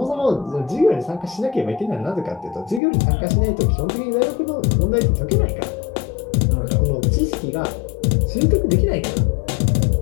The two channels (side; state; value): right; drops out; at 2.8 s